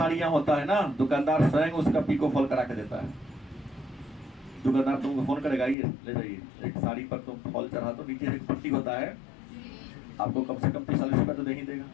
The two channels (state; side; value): drops out; right; at 5.8 s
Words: होता है ना, दुकानदार स्वयं उसका पीको फॉल करा के देता है। दुकानदार तुमको फोन करेगा, ये ले जाइए, एक साड़ी पर तुम फॉल चढ़ा दो, नीचे एक पट्टी होता है, आपको कम से कम 40 रुपया तो दे ही देगा।